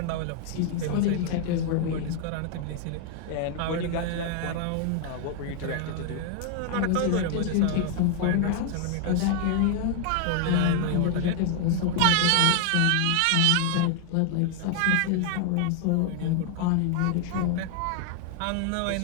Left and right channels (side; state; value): both; different; correlation 0.00